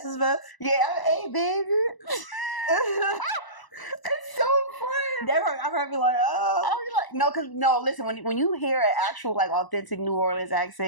Fest? Yeah, hey, baby. It's so fun. I've heard me like, no, listen, when you hear an actual authentic New Orleans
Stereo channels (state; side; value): late; right; 1.0 ms